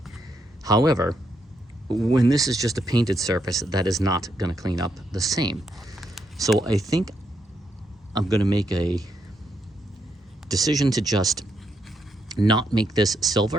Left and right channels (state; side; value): normal; both; correlation 0.79